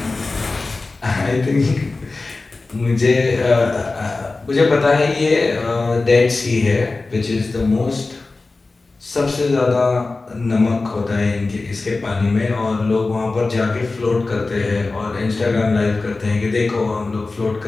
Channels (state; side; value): quieter; right; 3.5 dB